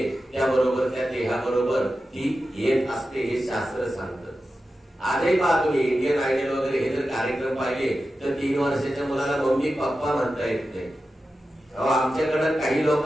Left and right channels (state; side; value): normal; both; correlation 0.92